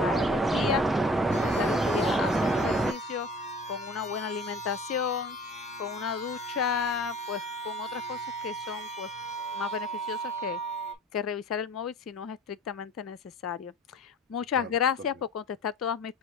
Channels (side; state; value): both; normal; correlation 0.44